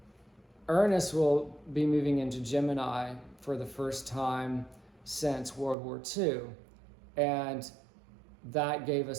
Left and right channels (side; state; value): left; drops out; at 5.8 s